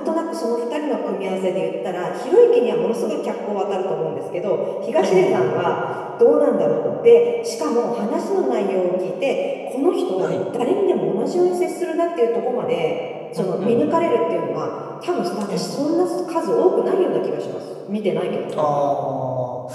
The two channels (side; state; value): both; identical; correlation 1.00